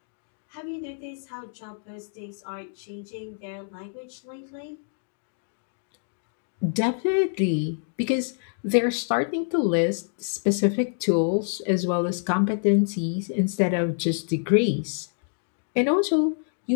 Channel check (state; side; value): silent; right; digital silence